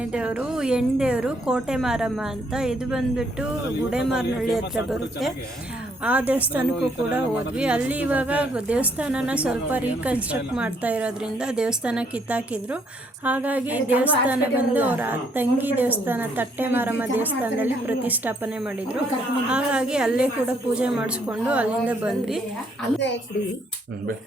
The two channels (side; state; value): both; normal; correlation 0.69